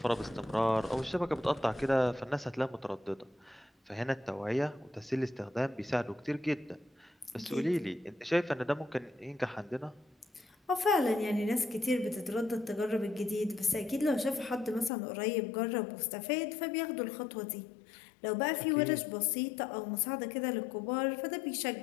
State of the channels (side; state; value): right; drops out; at 14.9 s